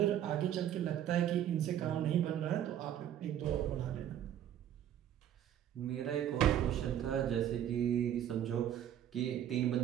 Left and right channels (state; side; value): quieter; left; 10.7 dB